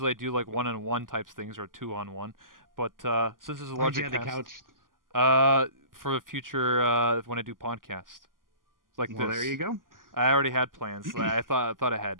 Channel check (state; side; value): late; left; 0.90 ms